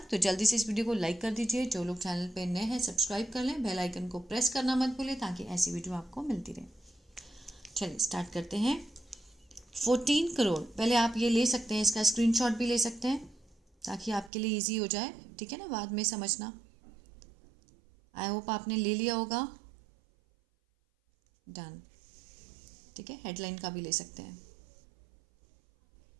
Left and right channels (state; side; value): drops out; left; at 14.3 s